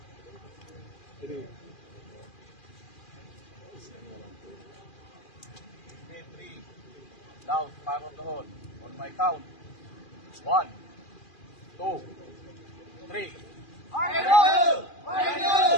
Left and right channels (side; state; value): right; late; 2.4 ms